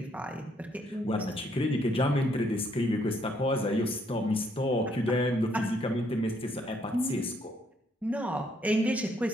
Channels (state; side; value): normal; both; correlation 0.70